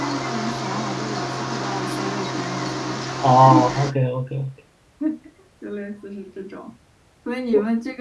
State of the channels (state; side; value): identical; both; correlation 1.00